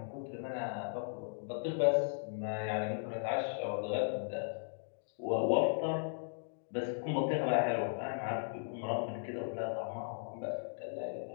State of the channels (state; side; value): silent; right; digital silence